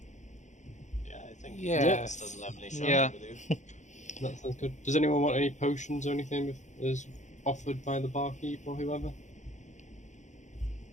Yeah, I think Yes. doesn't have any shopping Yeah. to do. That sounds good. Does anyone want any potions or anything if is offered by the barkeep or whoever?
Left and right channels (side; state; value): right; late; 0.35 ms